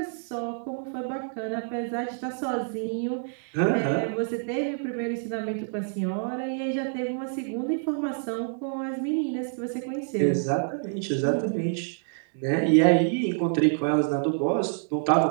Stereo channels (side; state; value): left; silent; digital silence